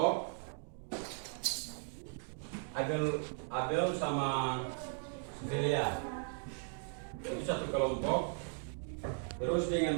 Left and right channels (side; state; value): left; silent; 53 dB below the other